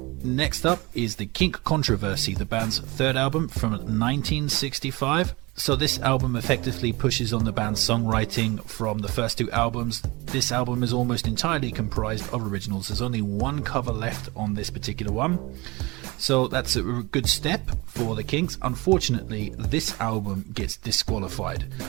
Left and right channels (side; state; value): left; quieter; 23.7 dB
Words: Next up is the Kink Controversy, the band's third album from 1965. So this album effectively pushes on the band's songwriting from the first two albums. This album is almost entirely comprised of originals. There's only one cover left on this particular one. So that's a good step for the Kinks. Unfortunately, this album gets disqualified